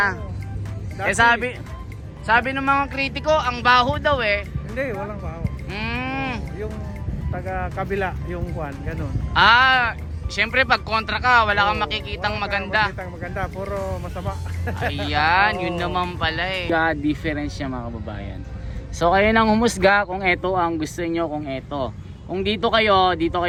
Eh sabi ng mga kritiko, ang baho daw eh. Hindi, walang bahaw. Yung taga kabila, yung kwan, ganun. Siyempre pag kontra ka, wala kang makikitang maganda. Makikitang maganda, puro masama. Ayan, yun naman pala eh. Difference niya mga kababayan. So kayo nang humusga kung ito ang gusto nyo, kung ito. Kung dito kayo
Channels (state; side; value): identical; both; correlation 1.00